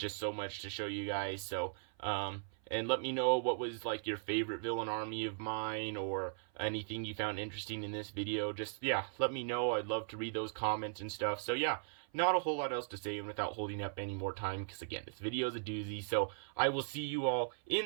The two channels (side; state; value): left; silent; 52 dB below the other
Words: so much to show you guys. So, and let me know what was your favorite villain army of mine, or anything you found interesting in this video. Just, yeah, let me know. I'd love to read those comments and stuff. So yeah, not a whole lot else to say, and without holding up any more time, because again, this video is a doozy. So I will see you all